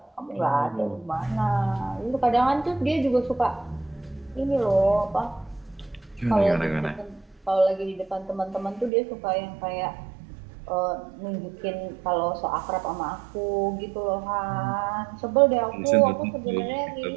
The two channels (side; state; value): left; drops out; at 8.9 s